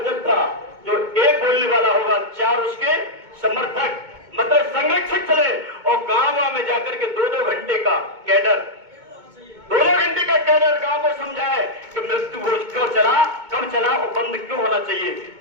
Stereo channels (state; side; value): late; left; 2.2 ms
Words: जो एक बोलने वाला होगा 4 उसके समर्थक मतलब संरक्षक चले, और गांव में जाकर के 2-2 घंटे का कैडर, 2-2 घंटे का कैडर गांव को समझाए कि मृत्यु भोज क्यों चला, कब चला और बंद क्यों होना चाहिए,